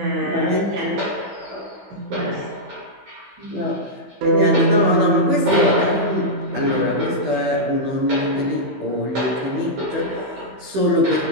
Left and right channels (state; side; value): late; left; 15 ms